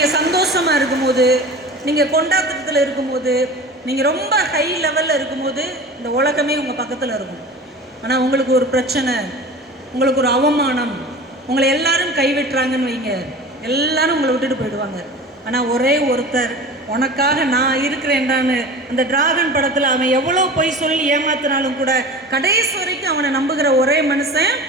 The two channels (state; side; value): normal; both; correlation 0.36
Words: சந்தோஷமாக இருக்கும்போது, நீங்கள் கொண்டாட்டத்தில் இருக்கும்போது, நீங்கள் ரொம்ப ஹை லெவலில் இருக்கும்போது இந்த உலகமே உங்கள் பக்கத்தில் இருக்கும். ஆனால் உங்களுக்கு ஒரு பிரச்சனை, உங்களுக்கு ஒரு அவமானம், உங்களை எல்லாரும் கைவிட்டுறாங்கன்னு வைங்க, எல்லாரும் உங்களை விட்டுட்டு போயிடுவாங்க. ஆனால் ஒரே ஒருத்தர் உனக்காக நான் இருக்கிறேன்டான்னு அந்த டிராகன் படத்தில் அவன் எவ்வளோ பொய் சொல்லி ஏமாத்தினாலும் கூட கடைசி வரைக்கும் அவனை நம்புகிற ஒரே மனுஷன்